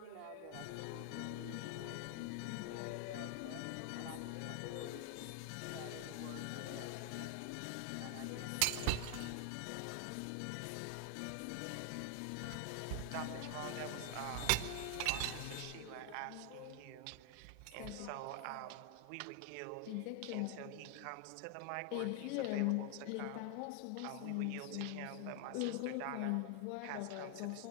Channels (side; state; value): both; different; correlation 0.00